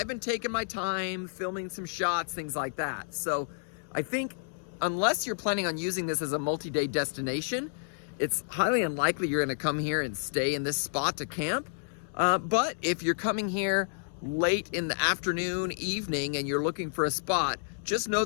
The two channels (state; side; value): silent; right; 58 dB below the other